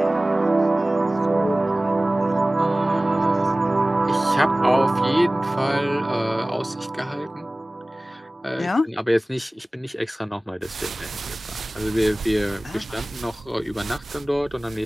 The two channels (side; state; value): both; normal; correlation 0.98